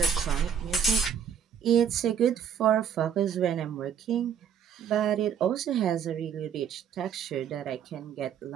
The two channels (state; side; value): quieter; left; 8.1 dB